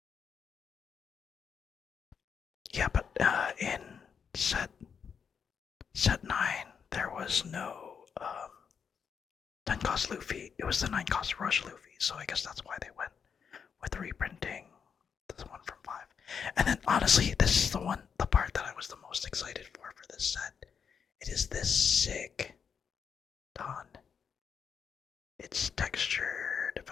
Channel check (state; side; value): quieter; right; 6.8 dB